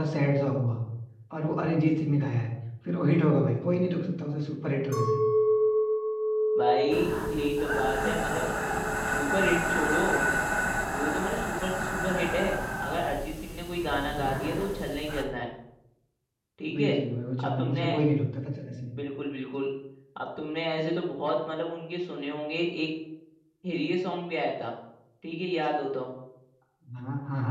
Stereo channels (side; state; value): both; identical; correlation 1.00